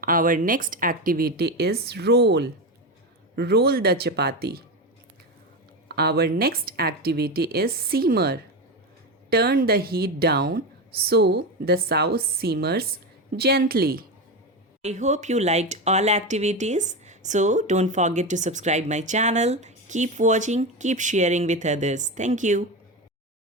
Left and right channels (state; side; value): normal; both; correlation 0.17